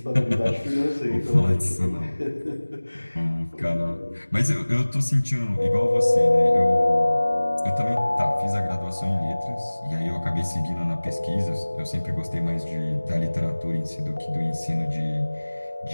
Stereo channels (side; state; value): both; inverted; correlation -1.00